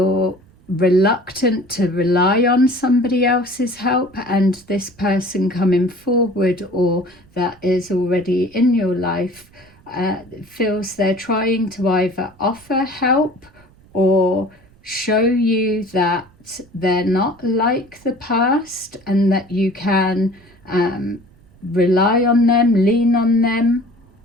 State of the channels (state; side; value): noise; right; rumble, 28 dB below the sound